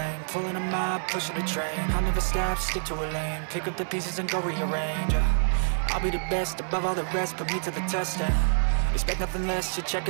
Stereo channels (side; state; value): left; silent; 60 dB below the other